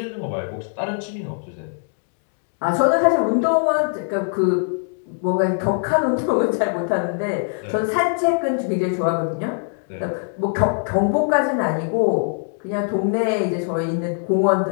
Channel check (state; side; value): silent; right; digital silence